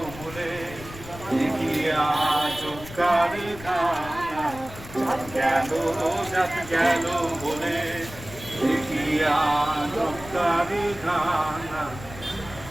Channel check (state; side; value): noise; left; rumble, 15 dB below the sound